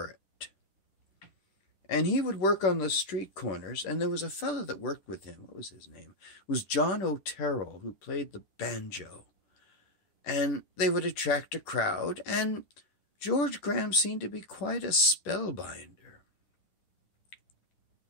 it. And he would work on the street corners, and there was a fellow that worked with him. What was his name? It was John Otero, who played the banjo. And they would attract a crowd, and George Graham seemed to be quite a spellbinder.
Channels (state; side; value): late; right; 10 ms